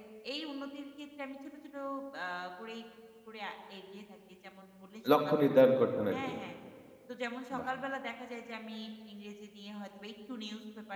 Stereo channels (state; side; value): identical; both; correlation 1.00